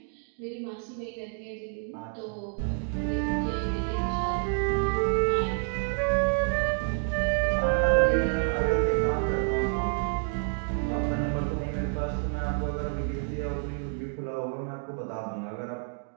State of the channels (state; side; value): silent; left; 55 dB below the other